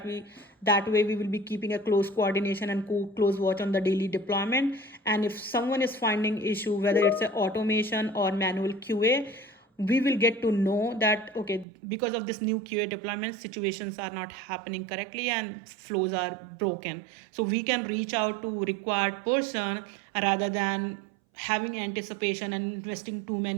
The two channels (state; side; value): drops out; left; at 11.7 s